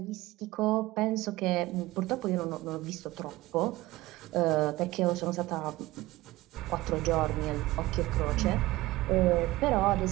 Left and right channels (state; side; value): quieter; left; 18.7 dB